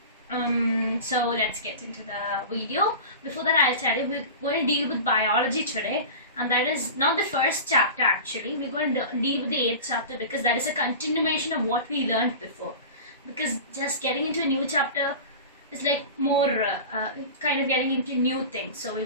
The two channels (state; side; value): inverted; both; correlation -0.33